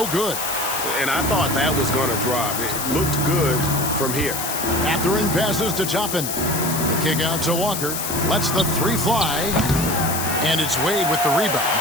good. And I thought that was going to drop. It looked good from here. Mathurin passes to Toppin. The kick out to Walker. Lets the 3 fly. And it's Wade with the rebound.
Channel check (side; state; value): left; noise; hiss, 4 dB below the sound